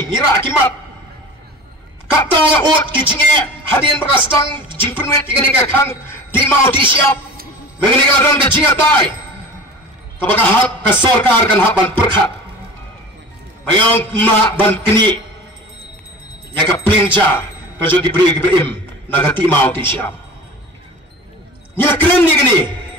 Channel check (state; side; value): normal; both; correlation 0.37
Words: ngira akimat. Kata ot kecingnya hadian berkastang jingpenwet ikan ikan kang di mau di siap. Mengenai kalau kecingnya tai. Kapakah hak kesorkar kan hak ban perkat. Mayang mak ban keni. Ya ka plinja ka jo gibri gibrim nagati mau ti siap nya keren ni gini